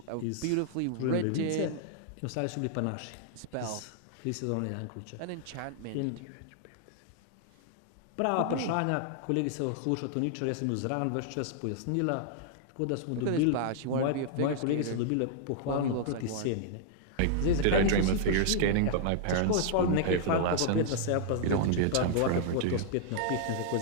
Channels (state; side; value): different; both; correlation -0.01